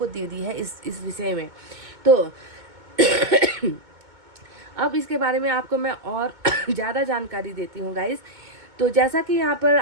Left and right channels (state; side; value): late; left; 2.2 ms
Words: दे दी है इस विषय में। तो अब इसके बारे में आपको मैं और ज़्यादा जानकारी देती हूँ गाइस। तो जैसा कि यहाँ पर